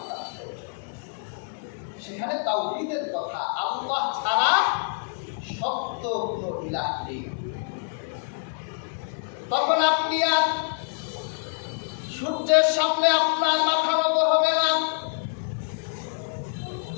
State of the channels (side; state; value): right; silent; digital silence